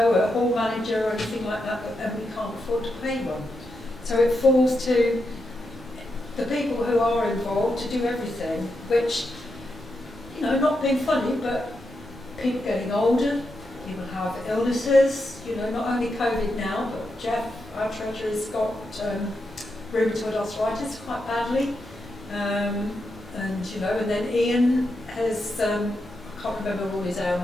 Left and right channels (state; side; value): normal; both; correlation 0.85